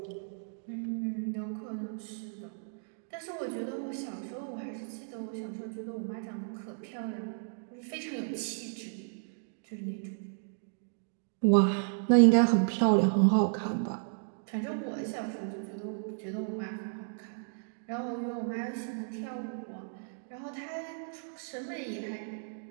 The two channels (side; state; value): left; silent; digital silence